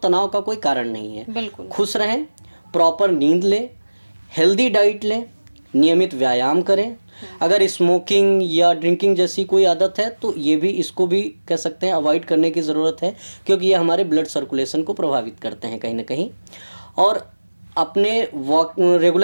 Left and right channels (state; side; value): inverted; both; correlation -1.00